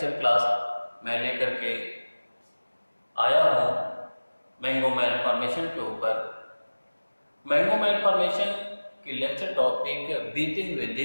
क्लास मैं लेकर के आया हूँ मैंगो मैलफॉर्मेशन के ऊपर। मैंगो मैलफॉर्मेशन की लेक्चर टॉपिक बीते हुए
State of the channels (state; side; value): inverted; both; correlation -1.00